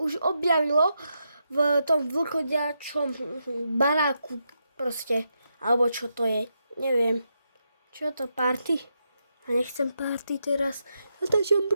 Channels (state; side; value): inverted; both; correlation -0.83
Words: objavilo v tom vlkodiačom baráku proste, alebo čo to je, neviem. Čo to, party? A nechcem party teraz, natáčam